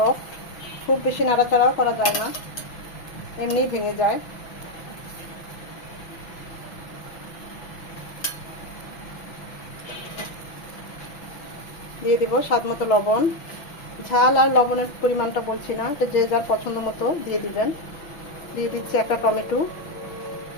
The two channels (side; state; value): right; late; 5.9 ms